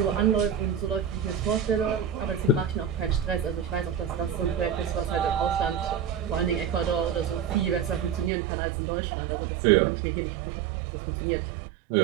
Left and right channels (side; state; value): left; drops out; at 8.3 s